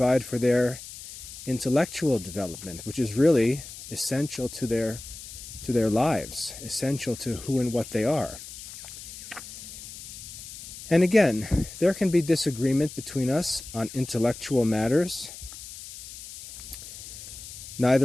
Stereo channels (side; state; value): left; noise; hiss, 13 dB below the sound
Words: for their intellectual development, which is really essential to their lives, essential to who and what they are. And again, there can be disagreement between us on intellectual matters.